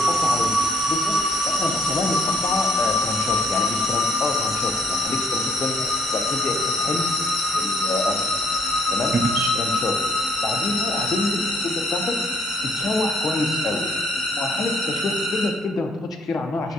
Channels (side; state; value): both; normal; correlation 0.66